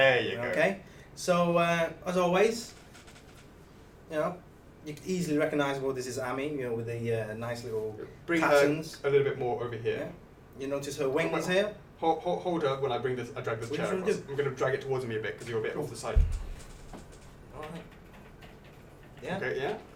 you go. Okay. So as always, you can easily recognise, this is Amy, with the nice little Bring patterns. her a little bit more over here. Yeah. You notice her wings here? Hold her when I drag this What chair are you trying to across. do? I'm going to drag it towards me a bit because you're a bit off the side. Alright. Yeah? Okay, yeah,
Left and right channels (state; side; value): identical; both; correlation 1.00